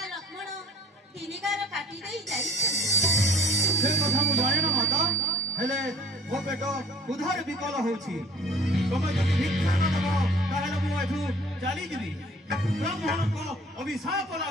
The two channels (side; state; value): both; normal; correlation 0.50